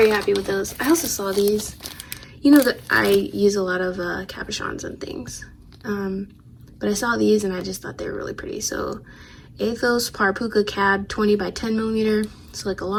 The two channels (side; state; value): both; identical; correlation 1.00